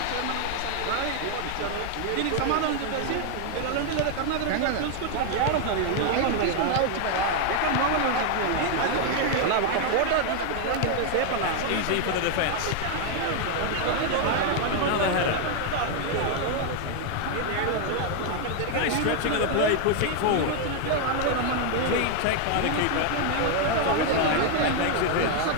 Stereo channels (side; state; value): both; different; correlation 0.00